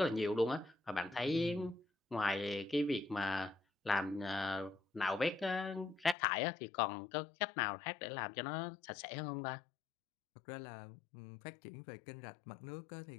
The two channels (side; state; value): right; drops out; at 6.2 s